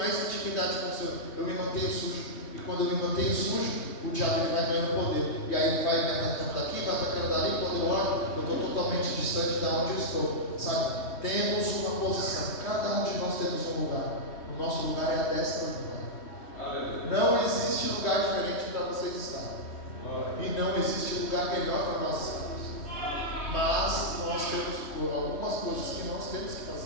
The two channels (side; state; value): right; late; 3.2 ms